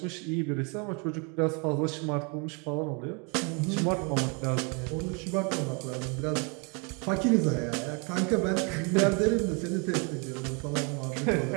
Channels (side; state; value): left; quieter; 33.6 dB